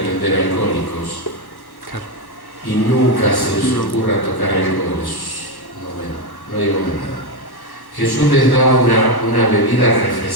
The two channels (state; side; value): late; right; 1.1 ms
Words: alcohólicos. Y nunca se les ocurra tocar alcoholes. No digo más nada. Jesús les da una bebida